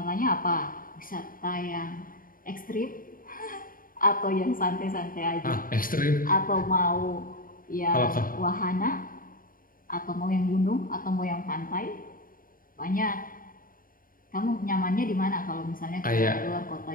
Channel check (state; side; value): late; right; 0.41 ms